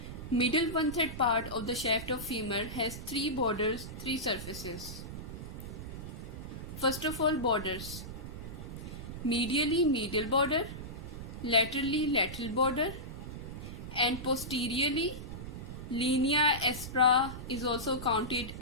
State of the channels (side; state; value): right; noise; rumble, 9 dB below the sound